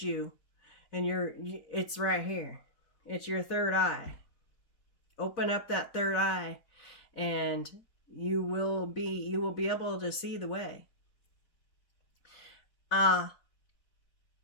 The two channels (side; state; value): right; late; 4.1 ms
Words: you, and it's right here. It's your third eye. Open up that third eye and you will be able to see the way.